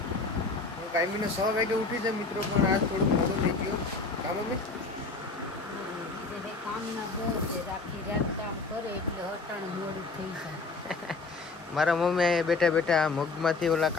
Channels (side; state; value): right; quieter; 3.9 dB